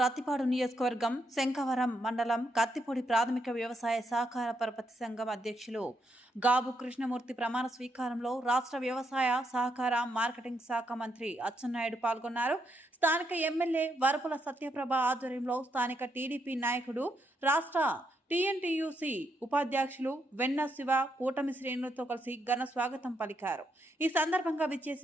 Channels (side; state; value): both; normal; correlation 0.78